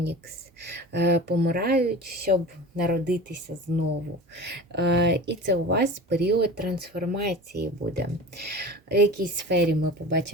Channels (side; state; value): both; normal; correlation 0.36